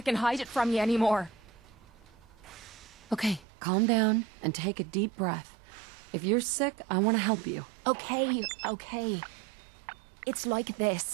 can hide it from you anymore. Okay, calm down and take a deep breath. If you're sick, I want to help you. Okay. It's like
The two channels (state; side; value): drops out; left; at 3.5 s